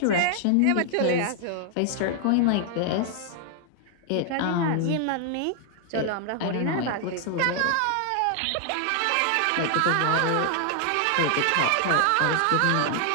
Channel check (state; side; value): different; both; correlation 0.00